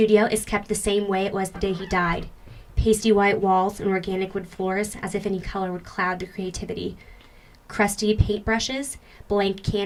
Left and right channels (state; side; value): identical; both; correlation 1.00